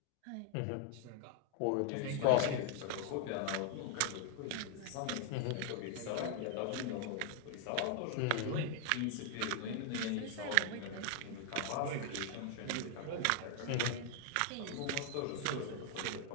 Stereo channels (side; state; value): both; different; correlation 0.00